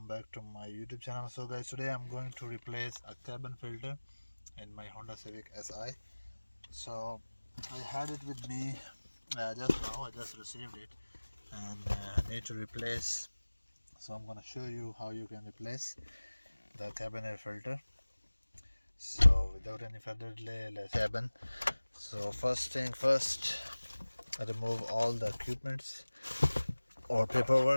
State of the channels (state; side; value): inverted; both; correlation -1.00